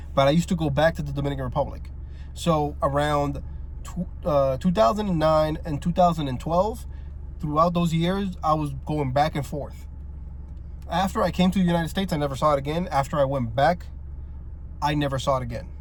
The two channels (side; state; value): both; identical; correlation 1.00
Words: but I used to go back to the Dominican Republic. So around 2009 and 2012, throughout those years, I was going back and forth. After I came to the United States, I never saw it again. After I went back, I never saw it again.